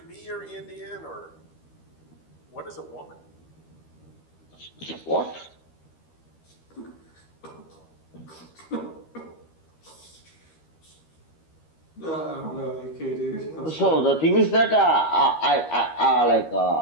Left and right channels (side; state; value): right; late; 13 ms